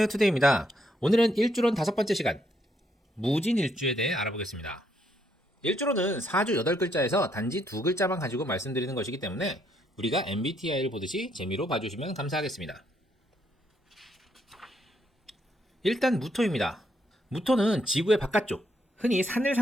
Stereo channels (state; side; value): normal; both; correlation 0.74